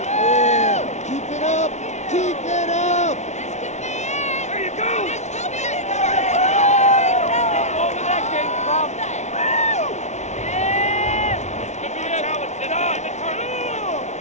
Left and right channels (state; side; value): late; right; 0.33 ms